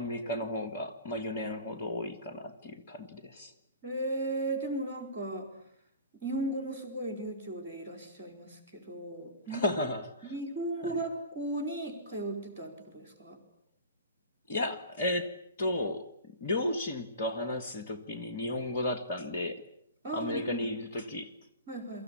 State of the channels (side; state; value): both; inverted; correlation -0.38